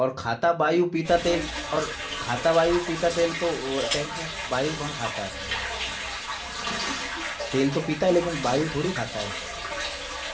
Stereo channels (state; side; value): identical; both; correlation 1.00